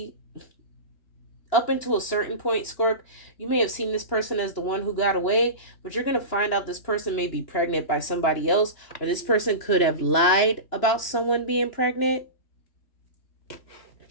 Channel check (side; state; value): right; late; 2.9 ms